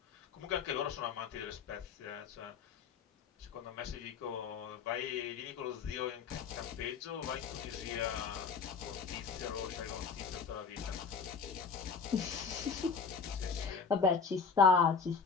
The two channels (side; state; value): right; quieter; 5.6 dB